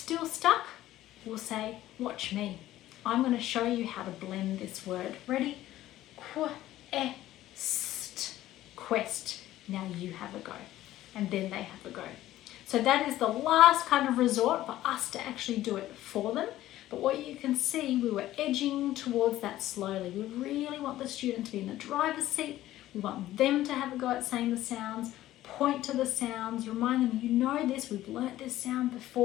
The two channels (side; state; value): right; quieter; 14.5 dB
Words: stuck, we'll say, watch me. I'm going to show you how to blend this word. Ready? Qu, st, quest. Now you have a go. And then they have a go. So that is the last kind of resort for us to actually do it for them. But what you can see, we were edging towards that slowly. We really want the student to be in the driver's seat. We want them to have a go at saying the sounds, point to the sounds, remind them, you know this, we've learnt this sound